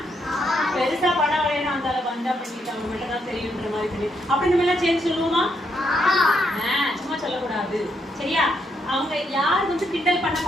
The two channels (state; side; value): normal; both; correlation 0.77